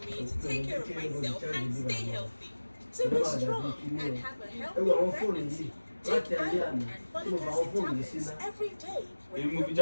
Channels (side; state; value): both; inverted; correlation -1.00